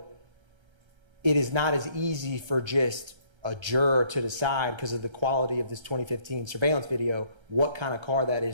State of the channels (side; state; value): left; late; 1.3 ms